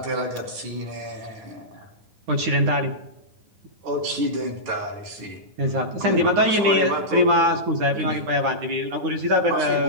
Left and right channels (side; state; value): left; late; 9.7 ms